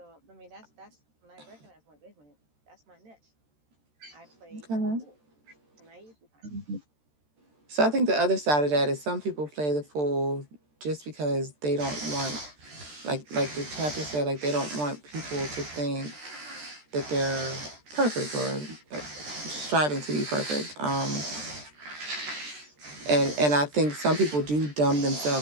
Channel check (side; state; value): left; late; 13 ms